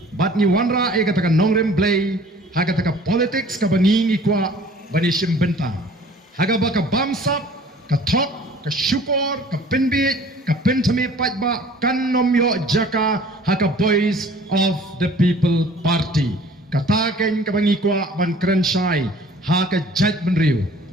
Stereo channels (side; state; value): both; normal; correlation 0.50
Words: bat ni wanra e kata ka nongrem play ha kata ka politics ka bangi ngikwa banishim benta haga baka bamsap ka thok ka syukur ka pinbit ka pentami pajba kan nomyo jaka haka voice of the people party kataken ka bangikwa ban krenshai haka judgment riu